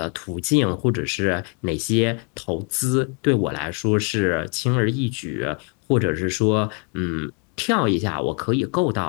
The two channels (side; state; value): right; quieter; 37.9 dB